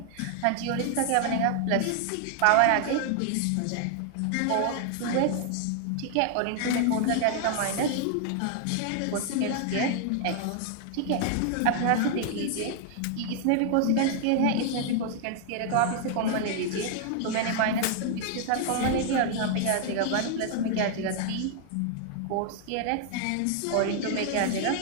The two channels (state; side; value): different; both; correlation 0.00